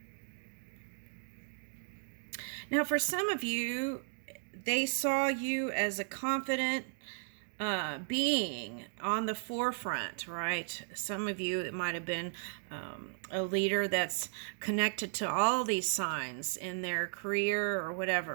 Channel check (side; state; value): left; silent; digital silence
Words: Now, for some of you, they saw you as a confident being on the forefront, right? Some of you, it might have been a leader that's connected to all these signs in their career or